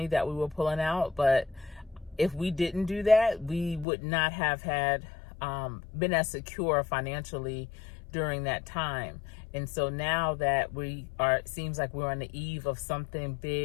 that we were pulling out. But if we didn't do that, we would not have had been as secure financially during that time. And so now that it seems like we're on the eve of something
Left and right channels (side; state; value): right; drops out; at 3.9 s